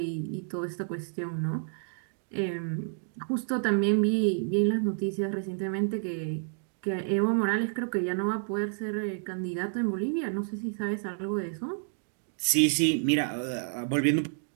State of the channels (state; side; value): silent; left; digital silence